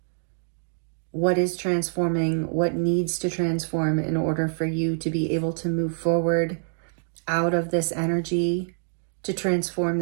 what is transforming, what needs to transform in order for you to be able to move forward out of this energy, to transform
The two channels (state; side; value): silent; left; 59 dB below the other